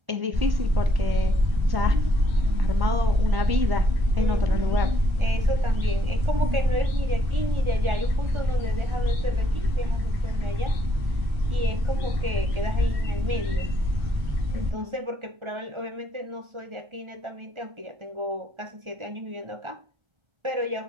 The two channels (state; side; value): late; left; 1.3 ms